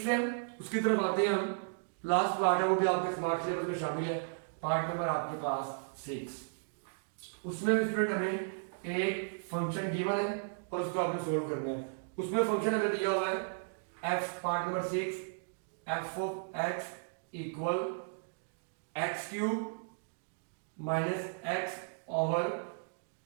है, उसकी तरफ आते हैं हम। लास्ट पार्ट है, वो भी आपके स्मार्ट सिलेबस में शामिल है, पार्ट नंबर आपके पास 6। उसमें स्टूडेंट हमें एक फंक्शन गिवन है और उसको आपने सोल्व करना है। उसमें फंक्शन हमें दिया हुआ है f, part number 6, f of x equal x³ minus x over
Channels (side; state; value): left; silent; digital silence